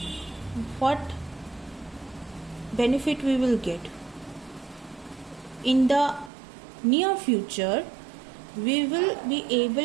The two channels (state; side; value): drops out; left; at 6.3 s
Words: what benefit we will get? In the near future, we will be